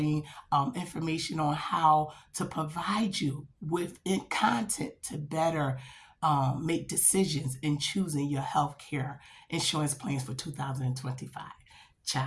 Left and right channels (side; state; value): both; identical; correlation 1.00